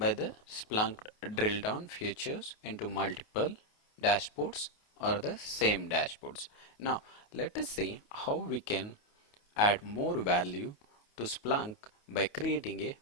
the Splunk drill down features into multiple dashboards or the same dashboards. Now let us see how we can add more value to Splunk by creating a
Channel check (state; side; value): late; right; 28 ms